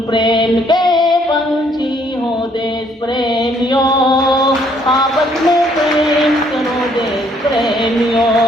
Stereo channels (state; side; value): normal; both; correlation 0.66